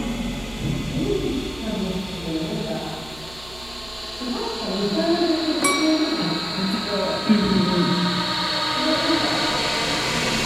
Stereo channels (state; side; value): noise; right; hum, 19 dB below the sound